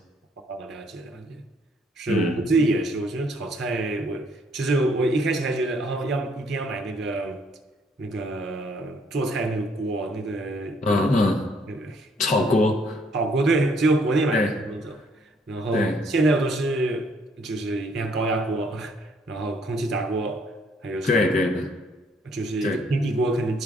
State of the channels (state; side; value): normal; both; correlation 0.66